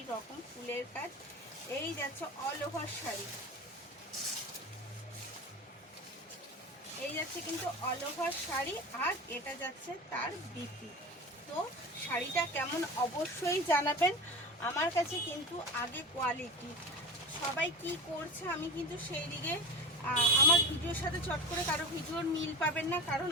রকম ফুলের কাজ, এই যাচ্ছে অল ওভার শাড়ি, এই যাচ্ছে কিন্তু অল ওভার শাড়ি, আর এটা যাচ্ছে তার বিপি। তো শাড়িটা কেমন অবশ্যই জানাবেন। আমার কাছে কিন্তু আগে কোয়ালিটি, সবাই কি করছে আমি কিন্তু সেই দিকে আমার ভিডিওর সাথে চট করে কারো ভিডিওর মিল পাবেন না, কারণ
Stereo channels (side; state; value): both; normal; correlation 0.28